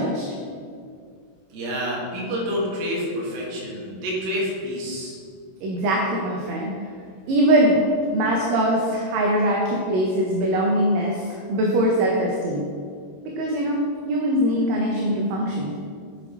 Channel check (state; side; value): late; left; 21 ms